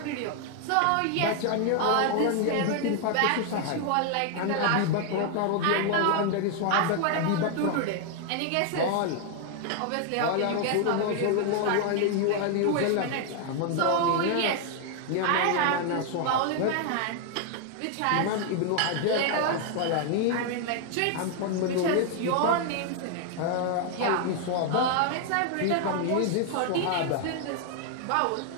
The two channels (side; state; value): both; different; correlation 0.00